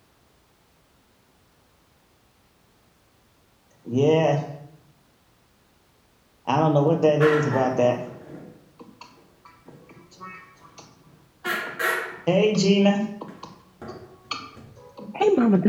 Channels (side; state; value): both; identical; correlation 1.00